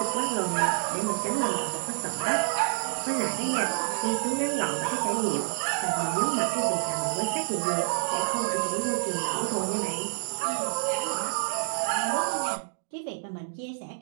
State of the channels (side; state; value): left; silent; digital silence